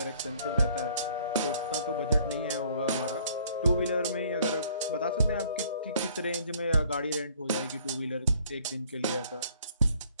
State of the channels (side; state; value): both; inverted; correlation -0.58